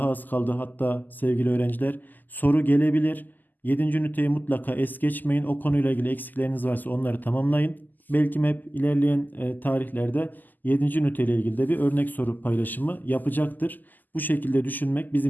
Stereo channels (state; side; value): late; right; 0.085 ms